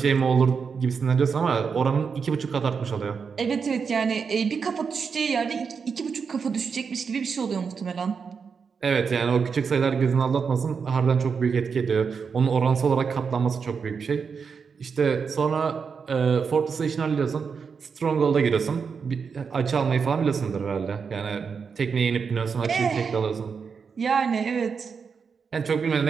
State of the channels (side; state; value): left; quieter; 5.8 dB